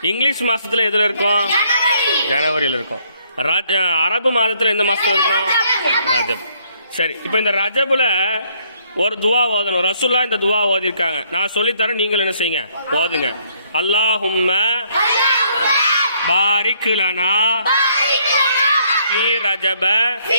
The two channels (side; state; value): both; inverted; correlation -0.68